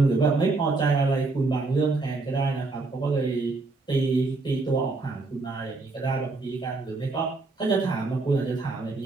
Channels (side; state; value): left; quieter; 3.6 dB